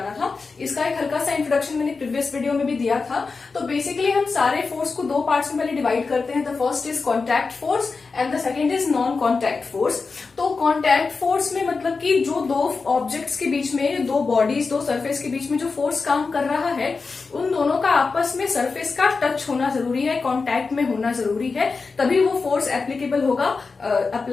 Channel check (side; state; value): right; quieter; 4.5 dB